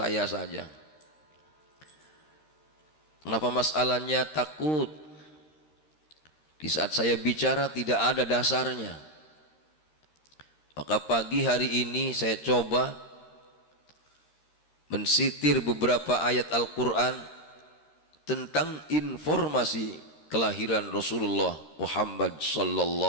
saja. Kenapa masalahnya takut? Di saat saya bicara tidak ada dasarnya. Maka pagi hari ini saya coba mensitir beberapa ayat Al-Quran tentang informasi kelahiran Rasulullah Muhammad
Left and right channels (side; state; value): right; late; 13 ms